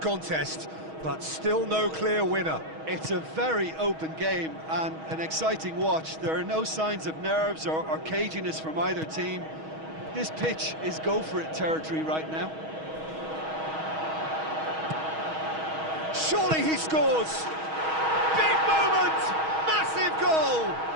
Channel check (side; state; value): left; late; 6.3 ms